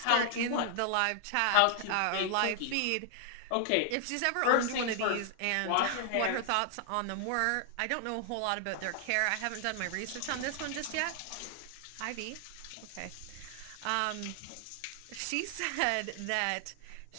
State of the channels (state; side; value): different; both; correlation 0.00